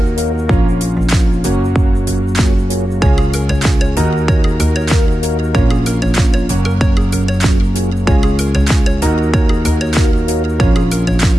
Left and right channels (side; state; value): both; normal; correlation 0.92